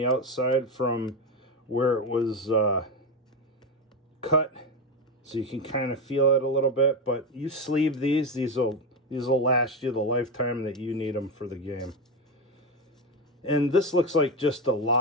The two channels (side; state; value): both; normal; correlation 0.13